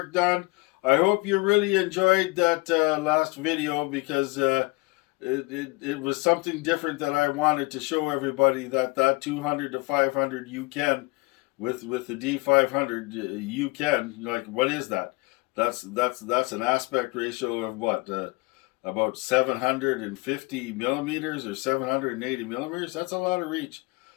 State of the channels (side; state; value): right; quieter; 25.5 dB